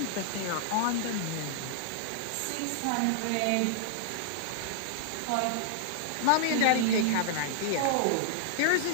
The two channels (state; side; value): different; both; correlation -0.01